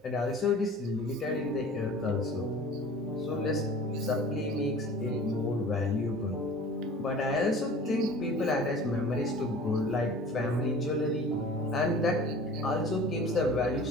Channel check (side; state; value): both; normal; correlation 0.43